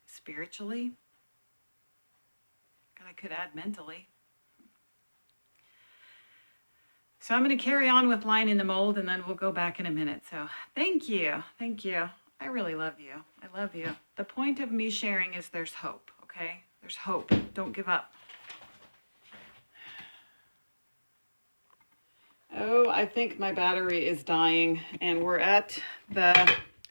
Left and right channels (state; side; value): inverted; both; correlation -1.00